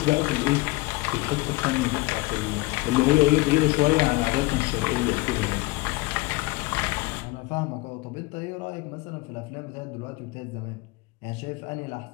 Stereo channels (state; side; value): quieter; right; 21.9 dB